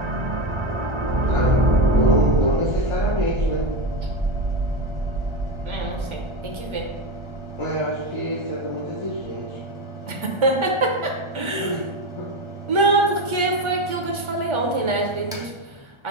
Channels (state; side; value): late; left; 1.3 ms